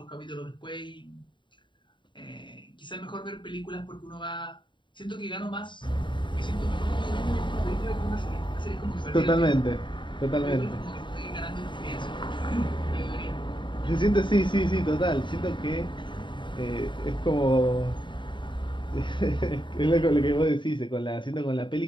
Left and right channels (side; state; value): right; late; 0.23 ms